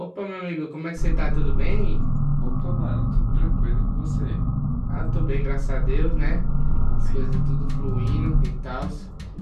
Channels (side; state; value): both; identical; correlation 1.00